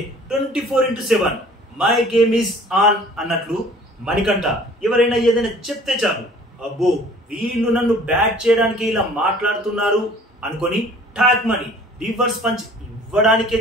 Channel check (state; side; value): normal; both; correlation 0.51